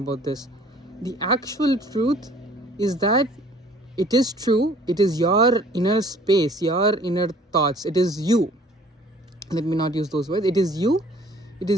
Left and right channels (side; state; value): both; normal; correlation 0.54